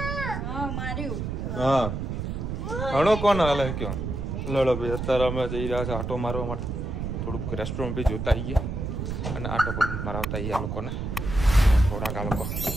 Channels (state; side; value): noise; right; rumble, 4 dB below the sound